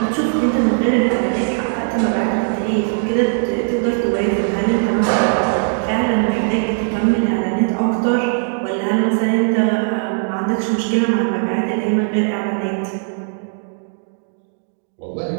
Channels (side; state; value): left; silent; digital silence